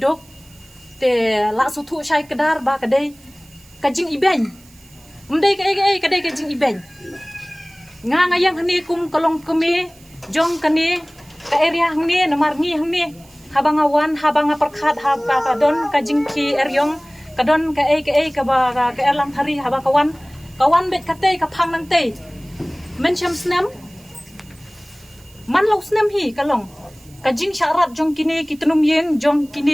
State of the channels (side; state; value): right; noise; hiss, 26 dB below the sound